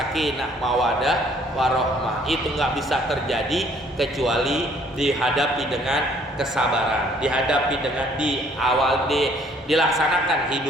mawadah, warohmah. Itu nggak bisa terjadi kecuali dihadapi dengan kesabaran, dihadapi dengan dilaksanakan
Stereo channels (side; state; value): both; normal; correlation 0.61